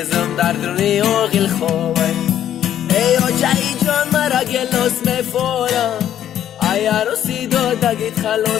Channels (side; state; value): right; quieter; 10.8 dB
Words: در درونی آقل خواه. ای آجه جان مرا گلاس میفوره، ای عروسی دادگیت